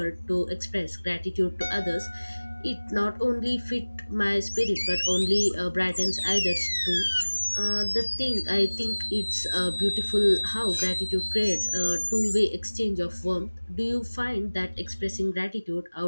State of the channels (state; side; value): inverted; both; correlation -1.00